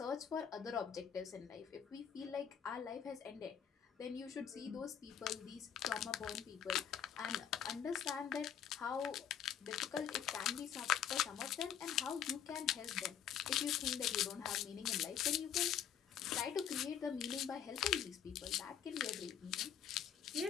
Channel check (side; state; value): right; quieter; 8.9 dB